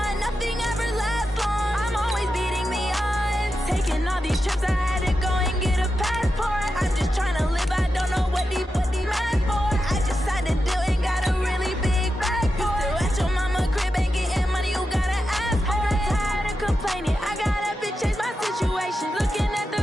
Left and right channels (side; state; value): both; normal; correlation 0.89